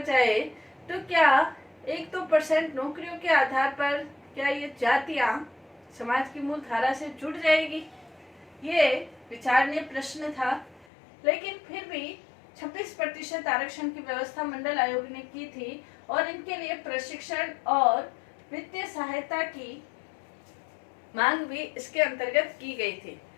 जाए तो क्या 1-2% नौकरियों के आधार पर क्या ये जातियां समाज की मूल धारा से जुड़ जाएगी? ये विचारणीय प्रश्न था। लेकिन फिर भी 26% आरक्षण की व्यवस्था मंडल आयोग ने की थी और इनके लिए प्रशिक्षण और वित्तीय सहायता की मांग भी इसके अंतर्गत की गई थी।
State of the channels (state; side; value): drops out; right; at 10.9 s